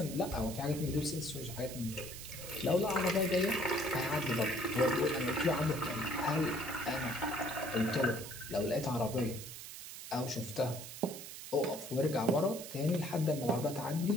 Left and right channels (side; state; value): right; noise; hiss, 11 dB below the sound